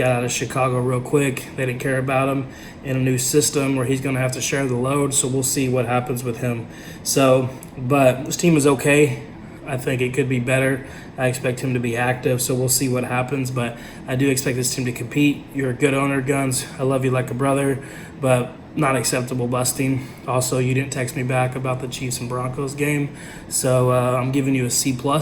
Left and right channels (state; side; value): identical; both; correlation 1.00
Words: out of Chicago real quick. They didn't care about him in a new system where he's going to have to share the load, so we'll see what happens with him. But this team is okay. I think it could be better. I expect him to be active, so we'll see what happens. But I do expect this team to compete. You're a good owner, Guns. I love you like a brother, but not acceptable busting. Also, you didn't text me back about the Chiefs and Broncos game, so I'm giving you a C+.